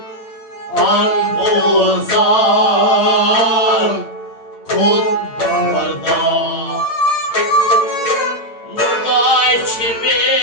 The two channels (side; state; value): right; late; 8.8 ms